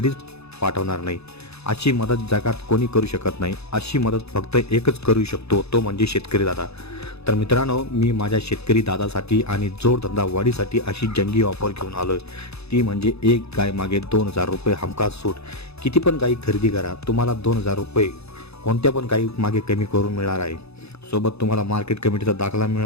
पाठवणार नाही. अशी मदत जगात कोणी करू शकत नाही. अशी मदत फक्त एकच करू शकतो, तो म्हणजे शेतकरी दादा. तर मित्रांनो, मी माझ्या शेतकरी दादासाठी आणि जोडधंदा वाढीसाठी अशी जंगी ऑफर घेऊन आलोय. ती म्हणजे एक गाय मागे 2,000 रुपये हमखास सूट. किती पण गाई खरेदी करा, तुम्हाला 2,000 रुपये कोणत्या पण गाई मागे कमी करून मिळणार आहे. सोबत तुम्हाला मार्केट कमिटीचा दाखला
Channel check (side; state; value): right; late; 0.79 ms